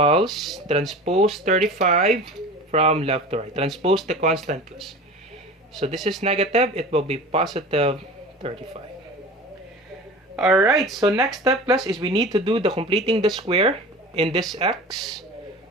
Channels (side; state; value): both; normal; correlation 0.36